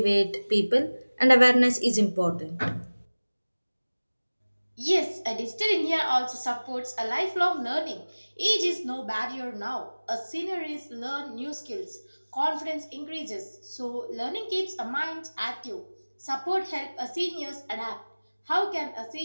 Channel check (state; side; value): inverted; both; correlation -1.00